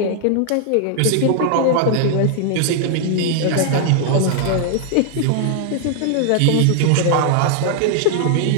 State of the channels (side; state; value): both; different; correlation -0.01